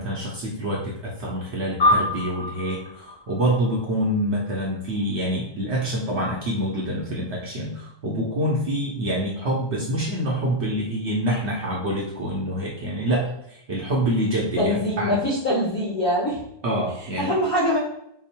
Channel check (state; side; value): late; right; 1.2 ms